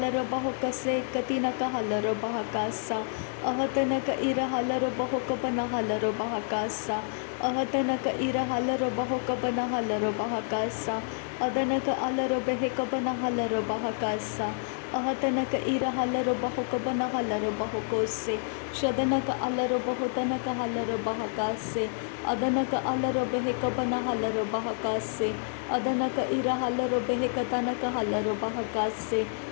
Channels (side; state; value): right; silent; digital silence